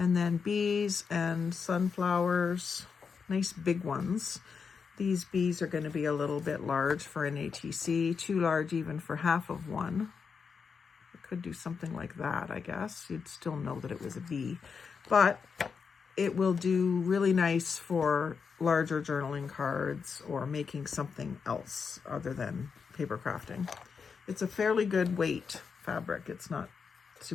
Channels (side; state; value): right; quieter; 5.8 dB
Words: then bees and sunflowers, nice big ones. These bees are going to be a little bit large for an ATC, too large even for half of one. I could do something like that, I guess. You'd still know that it was a bee. But it will do really nice for larger journaling cards or making something else other than paper crafting. It's a fairly good weight fabric. It's not